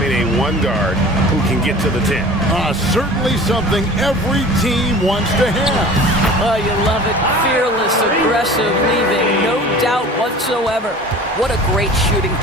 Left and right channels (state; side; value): normal; both; correlation 0.41